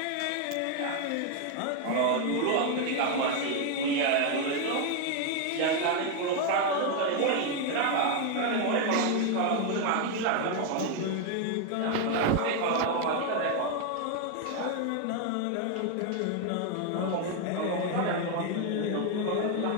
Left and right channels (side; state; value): both; different; correlation 0.01